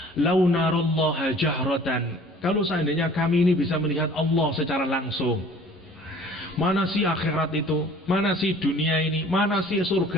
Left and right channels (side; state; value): both; normal; correlation 0.50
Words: lau narallaha jahratan, kalau seandainya kami ini bisa melihat Allah secara langsung, mana sih akhirat itu, mana sih dunia ini, mana sih